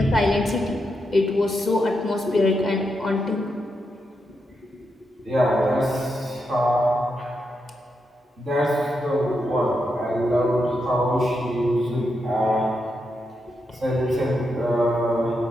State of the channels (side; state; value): both; normal; correlation 0.84